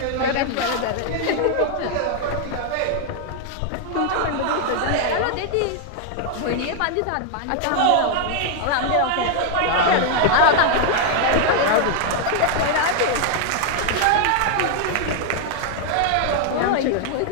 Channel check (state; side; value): different; both; correlation 0.00